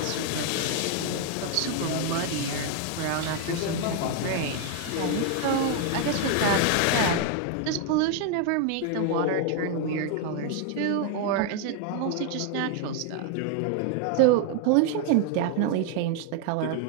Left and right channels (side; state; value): both; different; correlation 0.00